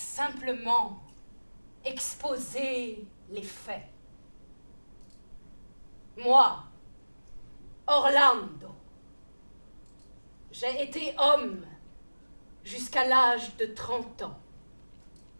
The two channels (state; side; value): inverted; both; correlation -1.00